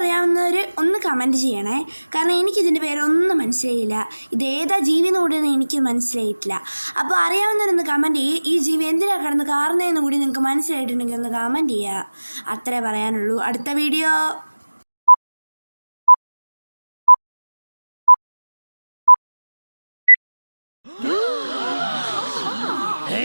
ഒന്ന് കമൻറ്റ് ചെയ്യണേ. കാരണം എനിക്കിതിൻ്റെ പേരൊന്നും മനസ്സിലായില്ല. ഇതേതാ ജീവി എന്ന് കൂടി എനിക്ക് മനസ്സിലായിട്ടില്ല. അപ്പോൾ അറിയാവുന്നവരൊന്ന് കമൻറ്റ് ചെയ്യും. ഈ ജീവി എന്തിനാണ് കിടന്ന് കാറുന്നതെന്ന് കൂടി നിങ്ങൾക്ക് മനസ്സിലായിട്ടുണ്ടെങ്കിൽ ഒന്ന് കമൻറ്റ് ചെയ്യുക. അത്രേ പറയാനുള്ളൂ. അടുത്ത വീഡിയോ.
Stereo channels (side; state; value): both; inverted; correlation -1.00